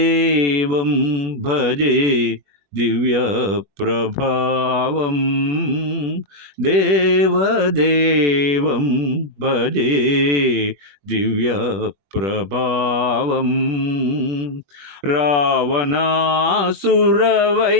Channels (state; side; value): late; left; 21 ms